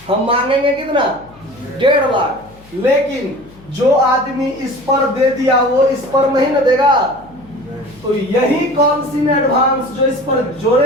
हम मांगेंगे कितना? 1.5 लाख। लेकिन जो आदमी इस पर दे दिया वो इस पर नहीं न देगा, तो यही कॉल्स इन एडवांस जो इस पर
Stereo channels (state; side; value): noise; left; hum, 24 dB below the sound